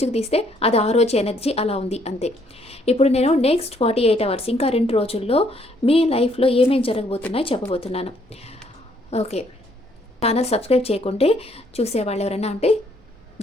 తీస్తే అది ఆ రోజు ఎనర్జీ అలా ఉంది అంతే. ఇప్పుడు నేను నెక్స్ట్ 48 అవర్స్, ఇంకా 2 రోజుల్లో మీ లైఫ్లో ఏమేమి జరగబోతున్నాయో చెప్పబోతున్నాను. ఓకే, ఛానల్ సబ్స్క్రైబ్ చేయకుంటే చూసేవాళ్ళు ఎవరైనా ఉంటే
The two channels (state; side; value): normal; both; correlation 0.67